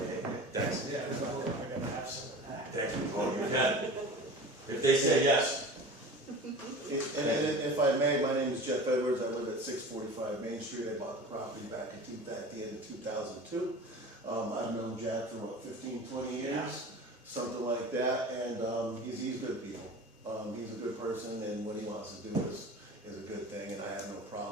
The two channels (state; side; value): normal; both; correlation 0.36